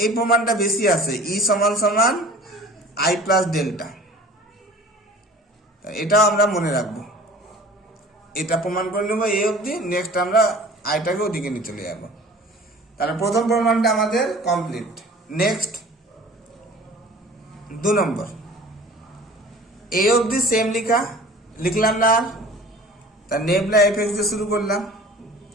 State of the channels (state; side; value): normal; both; correlation 0.44